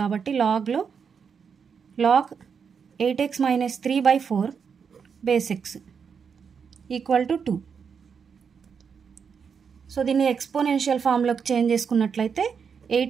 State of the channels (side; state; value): left; quieter; 6.4 dB